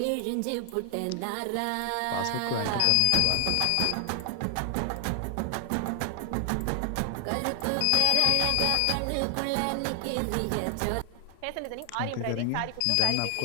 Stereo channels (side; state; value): both; different; correlation 0.00